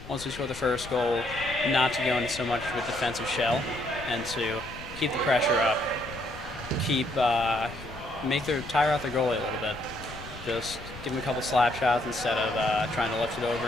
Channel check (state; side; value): noise; left; rumble, 14 dB below the sound